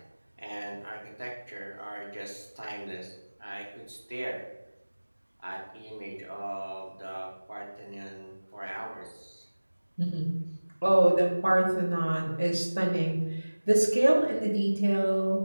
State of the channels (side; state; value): both; inverted; correlation -1.00